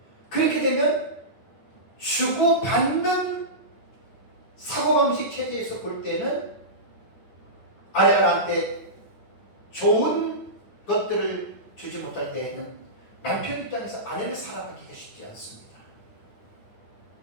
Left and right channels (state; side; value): late; right; 9.6 ms